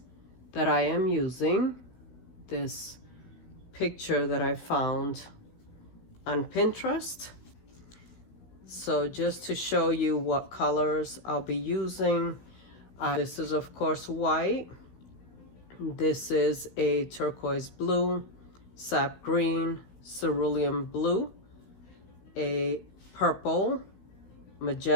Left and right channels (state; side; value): late; right; 16 ms